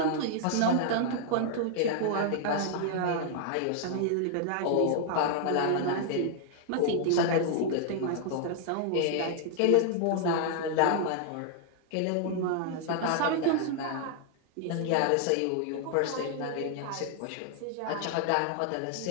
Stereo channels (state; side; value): different; both; correlation 0.00